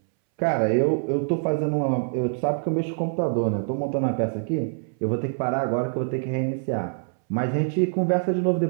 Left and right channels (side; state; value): left; silent; 62 dB below the other